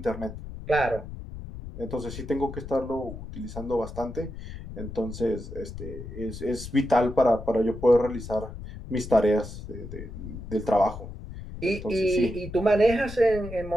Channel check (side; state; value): left; noise; rumble, 11 dB below the sound